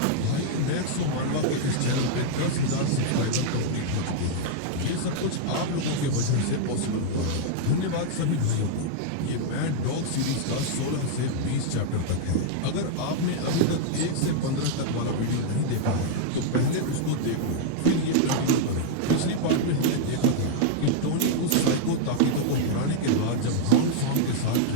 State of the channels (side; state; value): both; different; correlation -0.01